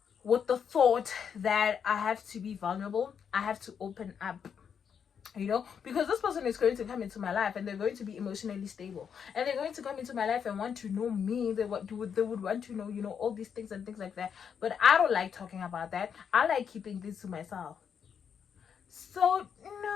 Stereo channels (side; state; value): right; quieter; 7.3 dB